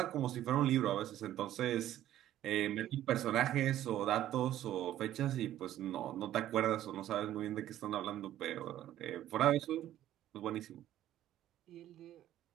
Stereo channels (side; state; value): left; quieter; 12.7 dB